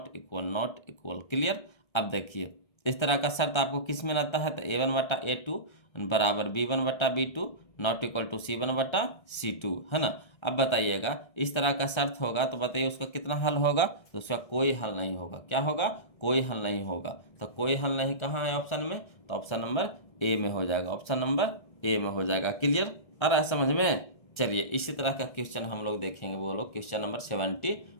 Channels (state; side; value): late; right; 1.3 ms